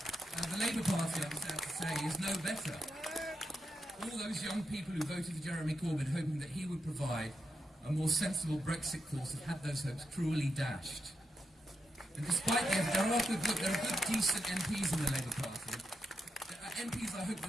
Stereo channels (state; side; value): normal; both; correlation 0.85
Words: The Labour Party, I'm sad to say, is no better. All those young people who voted for Jeremy Corbyn hoping that he would provide a more sensible Brexit course have had those hopes cruelly dashed. And despite there are good, decent MPs in the Labour Party. There are MPs I hope